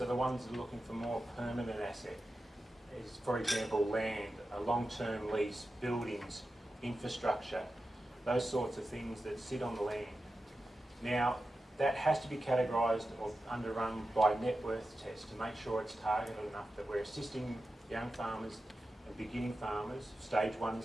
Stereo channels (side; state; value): both; normal; correlation 0.92